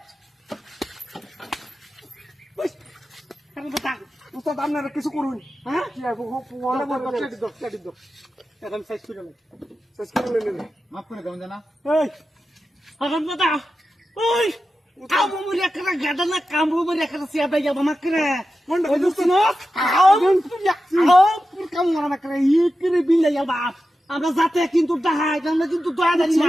বস কেন কথা উস্তাদ আপনারা কিছু করুন হ্যাঁ কি আর ওয়ালা বড় চেক দাও এখন সাইজ করে নে শেষ করে লেন মাফ করে দাও জানা এই এখন কথা ওই কামু মুরিয়া করা গাদা না কামু মুরিয়া করা সিয়াদা যাবা মাকরে কোনটা ওই দুস্ত না পুর কামু মারা মাকরে ইকরে বিলে যাবা আমরা যাতে কিন্তু দাহাই আমরা কিন্তু দয়া দেই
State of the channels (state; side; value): normal; both; correlation 0.92